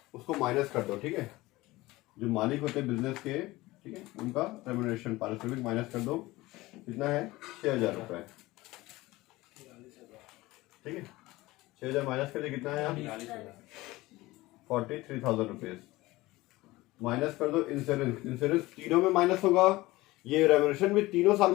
उसको माइनस कर दो, ठीक है। जो मालिक होते हैं बिजनेस के, ठीक है, उनका रेम्युनरेशन पारिश्रमिक माइनस कर दो। कितना है 6,000 रुपये, ठीक है। 6,000 माइनस कर दे, कितना है यहाँ 43,000 रुपीज। माइनस कर दो इंश्योरेंस, इंश्योरेंस तीनों में माइनस होगा, ये रेम्यूनरेशन भी तीनों साल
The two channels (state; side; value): quieter; right; 19.4 dB